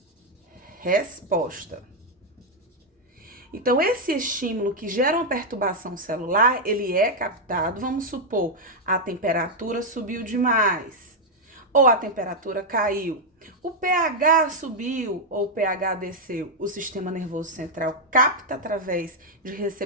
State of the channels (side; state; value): both; normal; correlation -0.01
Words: resposta. Então, esse estímulo que gera uma perturbação celular, ele é captado, vamos supor, a temperatura subiu demais, ou a temperatura caiu, o pH subiu ou o pH desceu, o sistema nervoso central capta através de